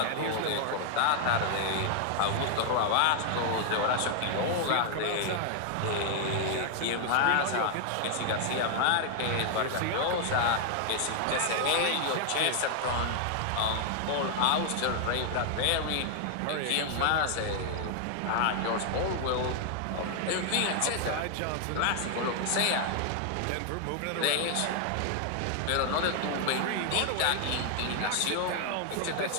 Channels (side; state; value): both; different; correlation 0.00